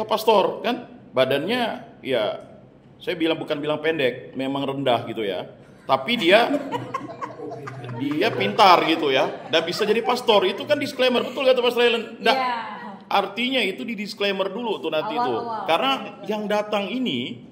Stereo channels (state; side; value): identical; both; correlation 1.00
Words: pastor kan badannya ya saya bukan bilang pendek, memang rendah gitu ya. Tapi dia pintar gitu ya dan bisa jadi pastor. Itu kan disclaimer, betul kata Pastor Ellen. Artinya itu di disclaimer dulu tuh nanti itu. Karena yang datang ini